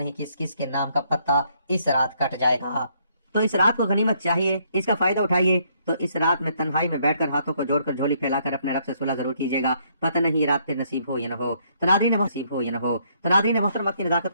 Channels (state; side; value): inverted; both; correlation -0.69